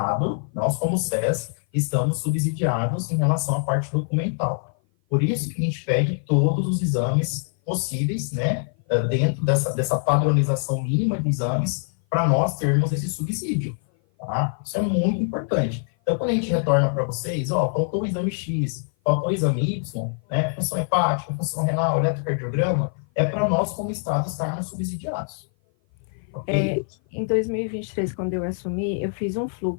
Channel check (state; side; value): silent; right; 56 dB below the other